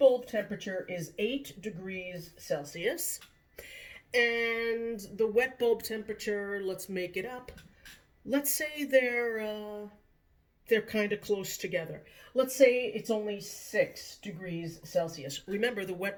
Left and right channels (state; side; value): identical; both; correlation 1.00